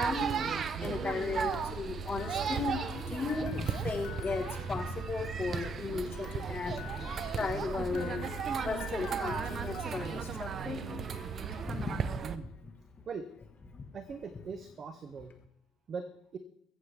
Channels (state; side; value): normal; both; correlation 0.72